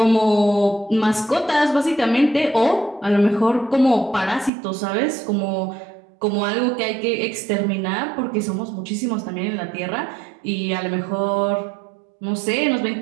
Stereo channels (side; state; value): left; drops out; at 4.5 s